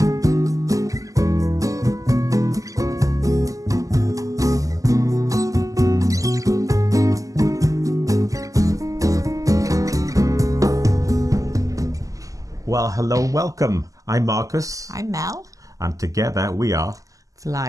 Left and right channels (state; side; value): late; left; 0.16 ms